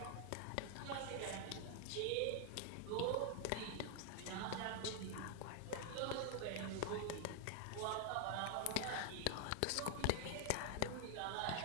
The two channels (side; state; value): both; different; correlation 0.00